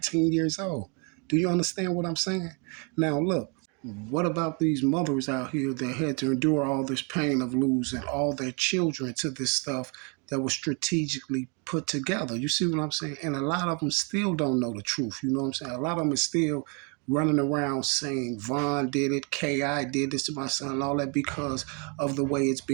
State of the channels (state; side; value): quieter; left; 34.7 dB